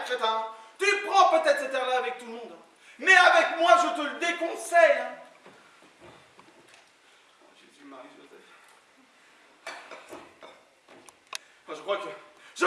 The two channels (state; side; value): identical; both; correlation 1.00